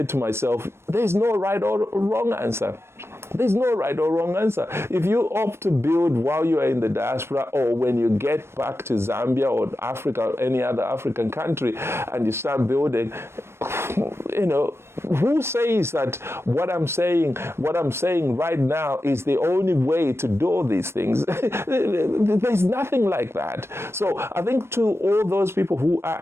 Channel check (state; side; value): late; left; 0.12 ms